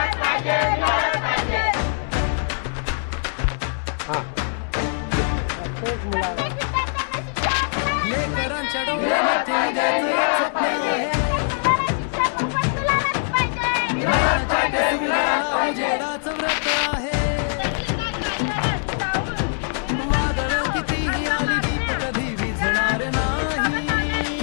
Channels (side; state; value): right; silent; digital silence